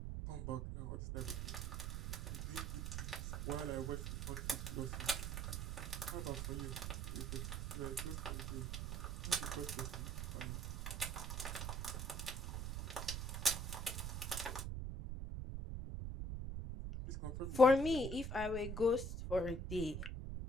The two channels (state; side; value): noise; right; rumble, 3 dB below the sound